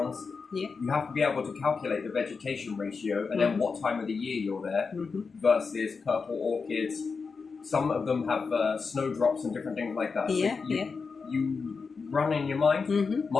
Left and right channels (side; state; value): right; quieter; 4.9 dB